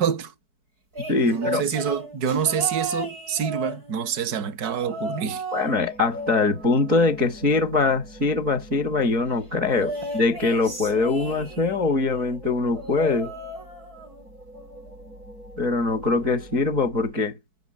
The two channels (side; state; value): left; late; 4.6 ms